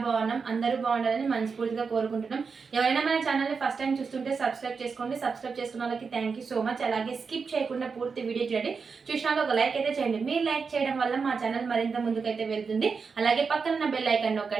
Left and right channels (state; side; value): quieter; left; 5.2 dB